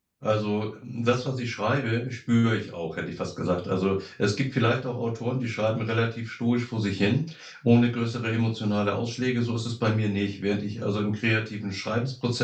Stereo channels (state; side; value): identical; both; correlation 1.00